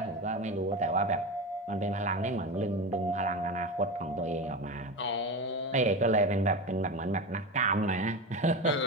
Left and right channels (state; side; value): normal; both; correlation 0.22